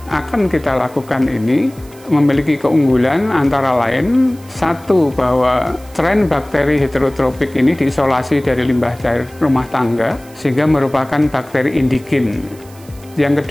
akan kita lakukan ini memiliki keunggulan antara lain, satu, bahwa strain bakteri heterotropik ini diisolasi dari limbah cair rumah tangga sehingga merupakan bakteri indigen. Yang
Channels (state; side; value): noise; right; hiss, 24 dB below the sound